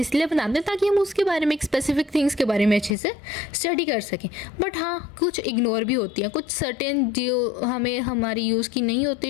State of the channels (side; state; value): right; drops out; at 3.0 s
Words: बनाते हैं ताकि हम उसके बारे में, एक स्पेसिफिक थिंग्स के बारे में अच्छे से स्टडी कर सकें। बट हाँ, कुछ इग्नोर भी होती हैं, कुछ सर्टेन जो हमें हमारी यूज़ की नहीं